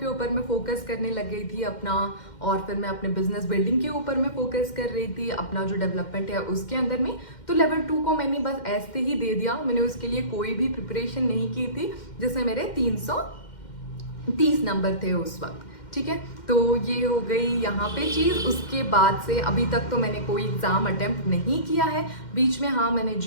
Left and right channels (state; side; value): late; right; 2.1 ms